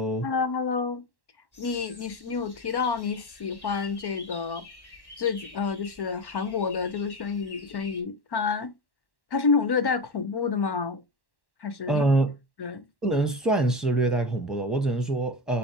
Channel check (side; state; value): right; late; 1.1 ms